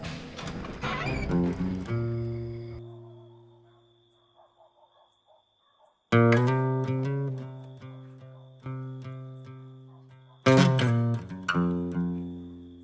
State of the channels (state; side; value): identical; both; correlation 1.00